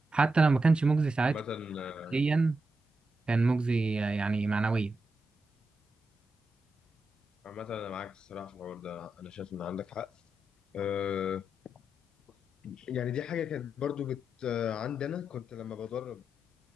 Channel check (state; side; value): normal; both; correlation 0.87